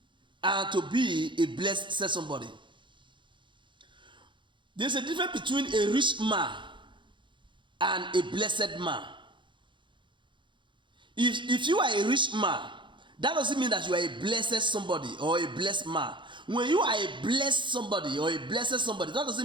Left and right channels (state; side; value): late; left; 0.23 ms